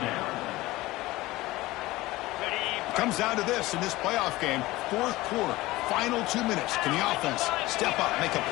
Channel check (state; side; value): quieter; right; 18.9 dB